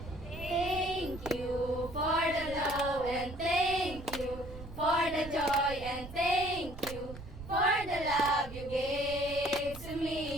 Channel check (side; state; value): right; noise; rumble, 13 dB below the sound